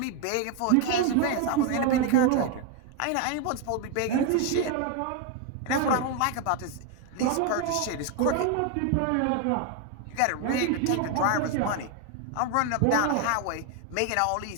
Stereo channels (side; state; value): both; different; correlation 0.01